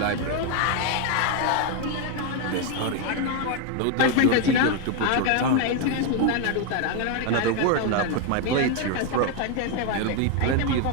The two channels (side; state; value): both; different; correlation 0.01